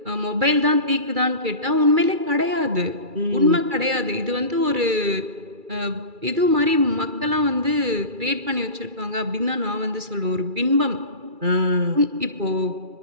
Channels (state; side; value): late; left; 2.3 ms